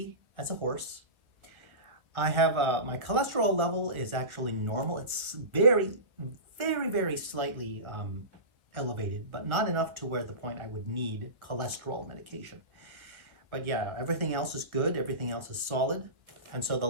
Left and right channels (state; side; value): late; left; 1.3 ms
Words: as a horse. I have, my cholesterol level is actually normal. It's very, very, very slightly elevated, but not enough to where the point I would need cholesterol medication. But yeah, everything else is good. Everything else is solid. And so the